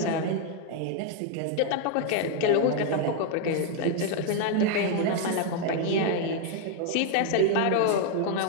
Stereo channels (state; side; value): different; both; correlation 0.00